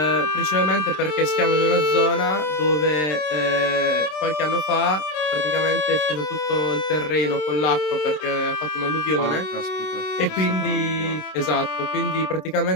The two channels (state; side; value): late; right; 26 ms